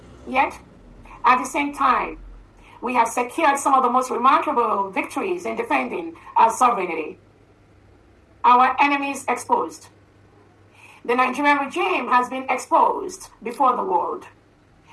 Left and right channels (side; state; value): both; identical; correlation 1.00